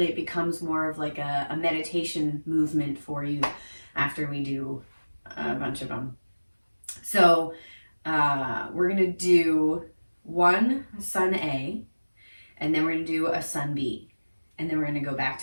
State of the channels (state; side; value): inverted; both; correlation -1.00